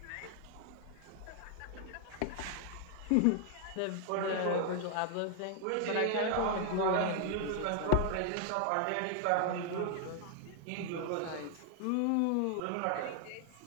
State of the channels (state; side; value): different; both; correlation 0.00